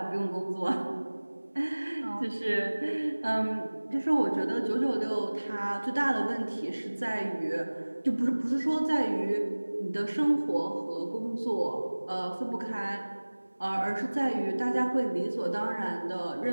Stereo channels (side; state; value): both; inverted; correlation -1.00